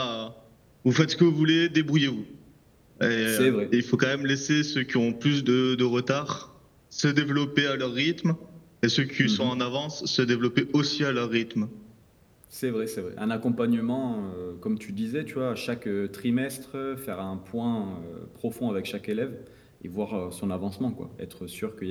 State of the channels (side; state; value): both; identical; correlation 1.00